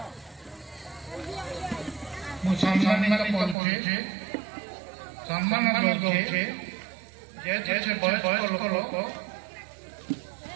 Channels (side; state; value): left; drops out; at 3.6 s